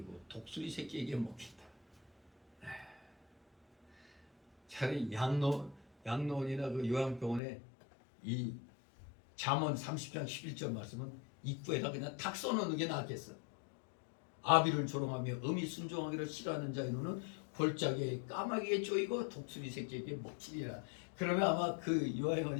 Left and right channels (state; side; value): drops out; right; at 7.4 s